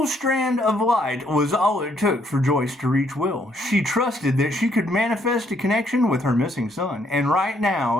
strand of light was all it took for Joyce to reach Will. She trusted that she could manifest a connection with her missing son. And right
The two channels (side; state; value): both; normal; correlation 0.70